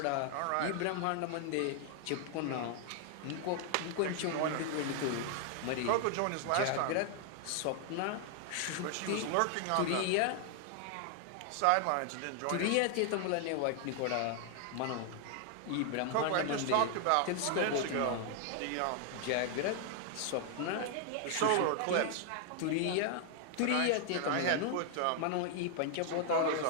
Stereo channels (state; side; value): different; both; correlation 0.00